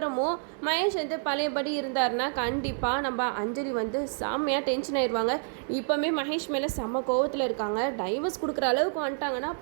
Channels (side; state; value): left; silent; digital silence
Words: மகேஷ் வந்து பழையபடி இருந்தாருன்னா கண்டிப்பாக நம்ம அஞ்சலி வந்து செம்மையாக டென்ஷன் ஆயிடுவாங்க. இப்போவுமே மகேஷ் மேலே செம்ம கோவத்தில் இருக்காங்க. டைவர்ஸ் கொடுக்குற அளவுக்கு வந்துட்டாங்கன்னா